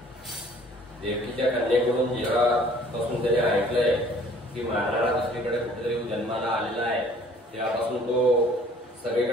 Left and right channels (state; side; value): normal; both; correlation 0.54